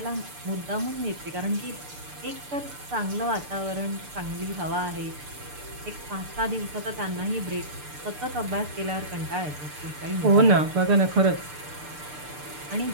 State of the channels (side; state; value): left; late; 6.8 ms